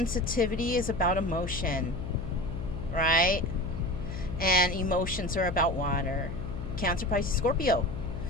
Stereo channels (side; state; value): left; noise; hum, 6 dB below the sound